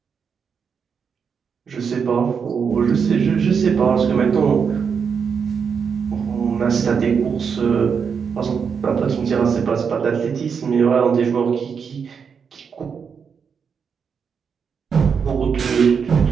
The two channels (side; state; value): left; quieter; 6.4 dB